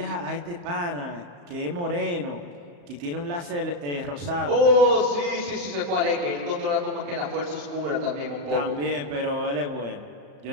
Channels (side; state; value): left; late; 35 ms